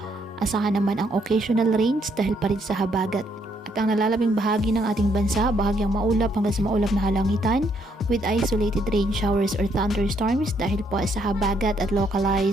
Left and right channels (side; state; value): both; normal; correlation 0.72